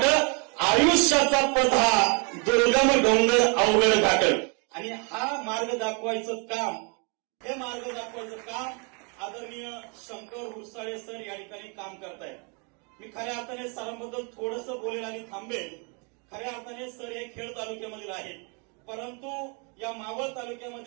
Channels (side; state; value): left; quieter; 35.2 dB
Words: आयुष्याचा पथ हा दुर्गम डोंगर अवघड घाट. आणि हा मार्ग दाखवायचं काम, हे मार्ग दाखवायचं काम आदरणीय शंकर हुरसाळे सर या ठिकाणी काम करतायत. मी खऱ्या अर्थाने सरांबद्दल थोडंसं बोलेल आणि थांबेल. खऱ्या अर्थाने सर हे खेड तालुक्यामधील आहेत, परंतु या मावळ